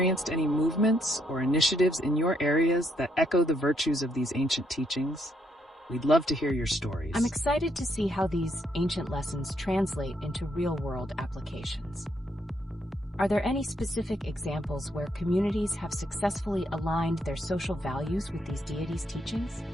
any movements or initiatives in your areas that echo the virtues of these ancient teachings? We'd love to hear your stories. I'm excited to see how these ancient lessons translate into real-world applications. Are there any specific examples where communities have successfully aligned their social values with these deities' teachings?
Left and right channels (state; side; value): normal; both; correlation 0.74